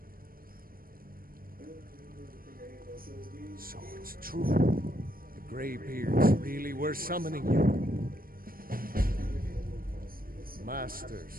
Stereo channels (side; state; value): left; late; 0.42 ms